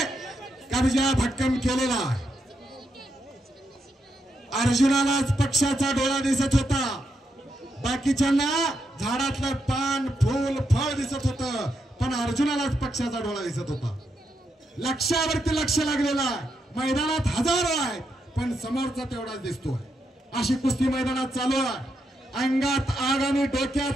कब्जा भक्कम केलेला अर्जुनालाच पक्षाचा डोळा दिसत होता बाकीच्यांना झाडातलं पान फूल फळ दिसत होतं पण अर्जुनालाच पक्षाचा डोळा दिसत होता लक्ष्यावरती लक्ष लागलेला मैदानात हजारो आहेत पण समोरचा तेवढाच दिसतोय अशी कुस्ती मैदानात चालू आहे अंगात आग आणि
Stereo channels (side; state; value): both; normal; correlation 0.82